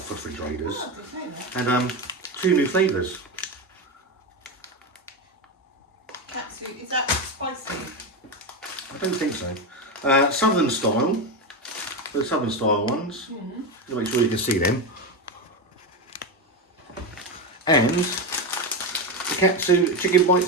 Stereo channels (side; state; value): both; normal; correlation 0.14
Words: refrigerators. And 2 new flavours. Katsu, is that spicy? I don't think so. Southern style. The Southern style ones. To make sure you can see them. And the Katsu chicken